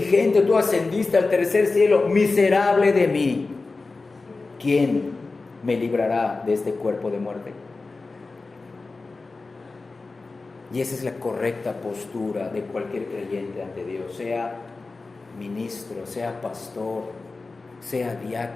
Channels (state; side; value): quieter; right; 3.7 dB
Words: Tú ascendiste al tercer cielo. Miserable de mí. ¿Quién me librará de este cuerpo de muerte? Y esa es la correcta postura de cualquier creyente ante Dios, sea ministro, sea pastor, sea